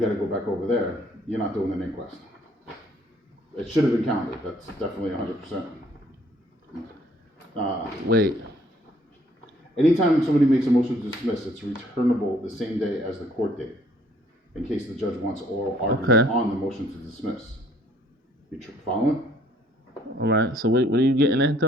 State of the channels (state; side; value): normal; both; correlation 0.62